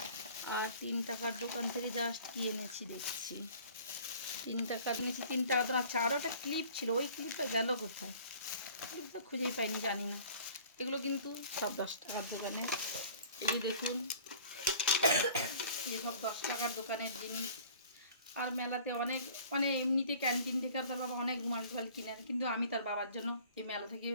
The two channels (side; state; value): both; inverted; correlation -0.49